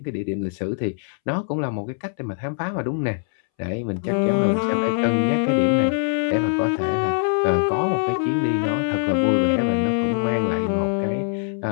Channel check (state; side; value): silent; right; 64 dB below the other